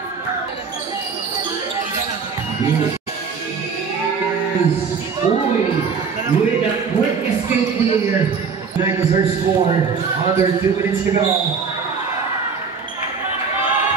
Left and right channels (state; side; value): quieter; left; 5.6 dB